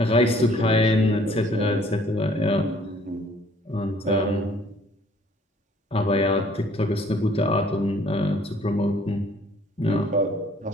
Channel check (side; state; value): both; normal; correlation 0.58